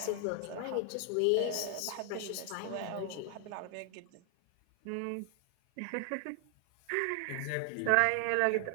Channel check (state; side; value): different; both; correlation 0.00